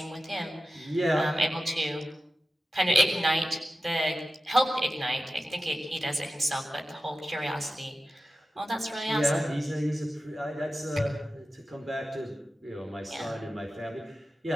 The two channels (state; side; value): normal; both; correlation 0.94